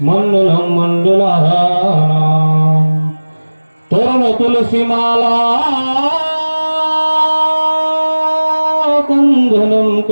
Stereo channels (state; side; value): inverted; both; correlation -1.00